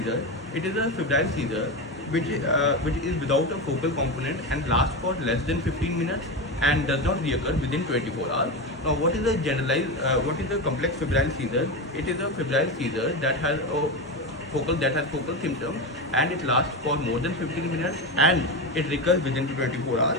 It is a febrile seizure which is without a focal component and lasts for less than 15 minutes and does not reoccur within 24 hours. Now, what is a complex febrile seizure? It is a febrile seizure that has focal symptoms and it lasts for more than 15 minutes and it recurs within 24 hours.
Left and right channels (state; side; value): normal; both; correlation 0.18